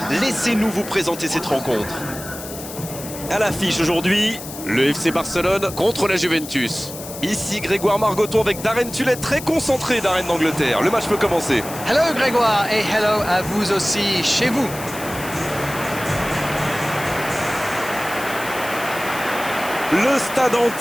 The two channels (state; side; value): noise; left; hiss, 12 dB below the sound